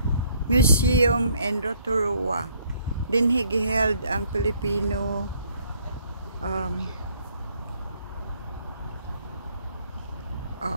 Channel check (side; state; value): both; inverted; correlation -0.65